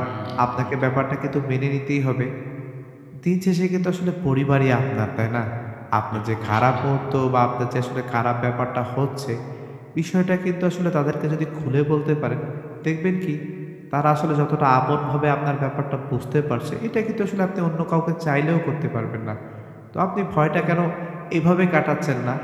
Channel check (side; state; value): both; identical; correlation 1.00